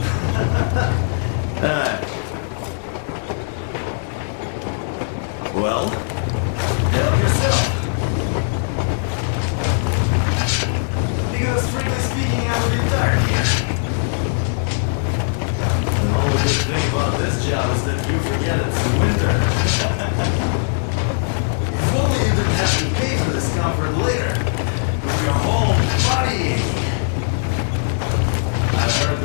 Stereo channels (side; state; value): right; silent; digital silence